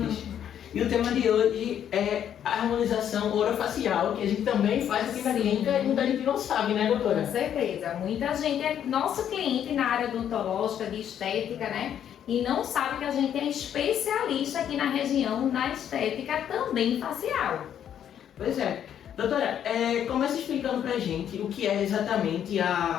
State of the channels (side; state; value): right; quieter; 9.6 dB